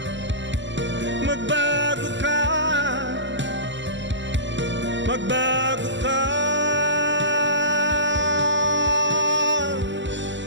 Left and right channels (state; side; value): late; left; 0.54 ms